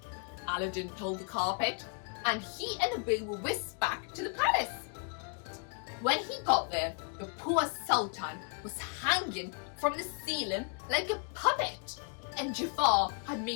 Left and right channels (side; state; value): right; quieter; 39.1 dB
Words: Aladdin told the carpet, and he and Abu were whisked back to the palace. When he got there, the poor Sultan was hanging from the ceiling like a puppet, and Jafar had